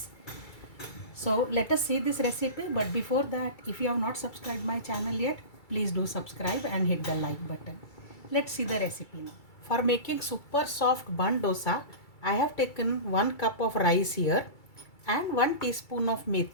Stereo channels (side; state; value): right; late; 2.3 ms